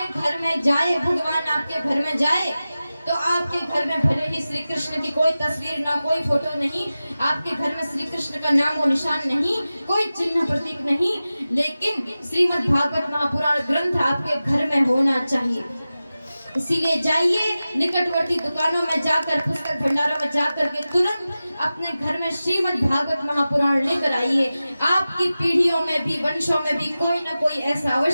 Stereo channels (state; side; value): inverted; both; correlation -0.95